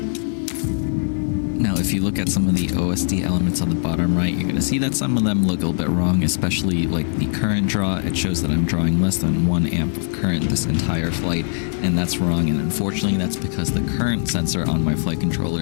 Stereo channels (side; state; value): right; silent; 65 dB below the other